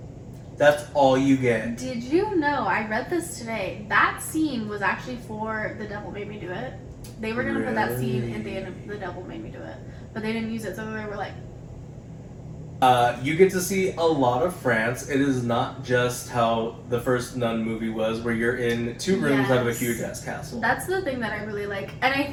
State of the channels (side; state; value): both; identical; correlation 1.00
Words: That's all you get. Did you know, I read this today, that scene was actually for The Devil Made Me Do It. They were going to put that scene in the end of The Devil Made Me Do It, but they didn't use it, so they were like... You get to see a lot of France. It is not just how the first Nun movie was, where you're in two rooms out of a huge ass castle. That's the thing that I really like, and I